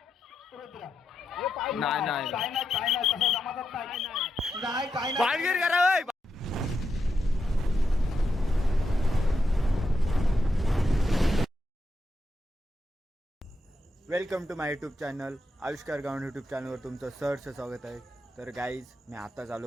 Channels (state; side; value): normal; both; correlation 0.85